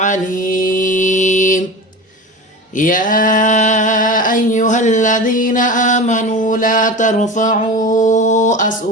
يا أيها الذين آمنوا لا ترفعوا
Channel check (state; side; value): normal; both; correlation 0.30